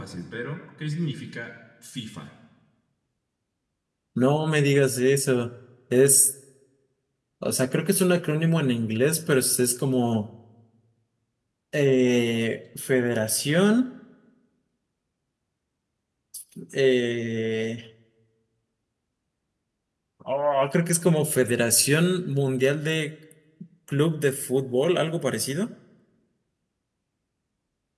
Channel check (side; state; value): both; identical; correlation 1.00